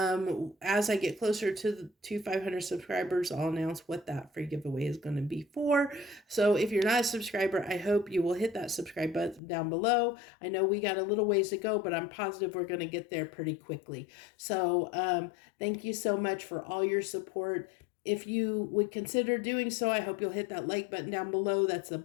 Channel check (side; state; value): right; drops out; at 9.4 s